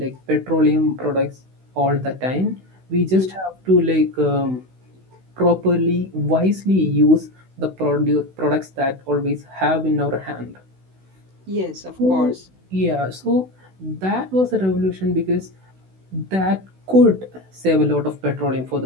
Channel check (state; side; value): late; left; 16 ms